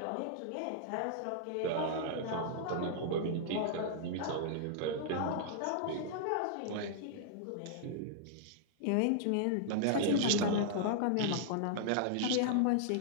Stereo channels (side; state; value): both; different; correlation -0.01